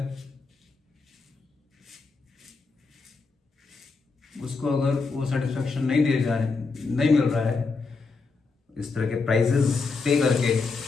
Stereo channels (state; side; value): quieter; right; 4.3 dB